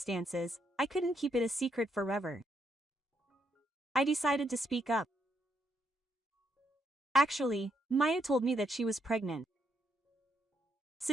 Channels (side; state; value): both; normal; correlation 0.77